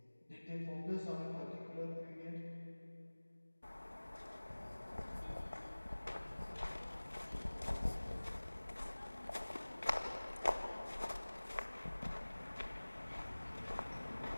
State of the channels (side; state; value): both; inverted; correlation -1.00